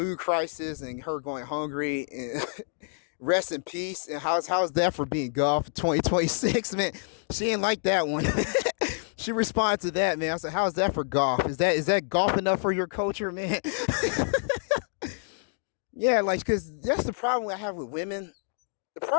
crisis and her going hungry and rest in peace. And how's that for being golf 2026, man? She didn't like that one. She responded to that, man. I said, how's that for golf? Is that golf enough for your culture, man? Yeah, like, because that's the problem I have with women. The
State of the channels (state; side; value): silent; right; digital silence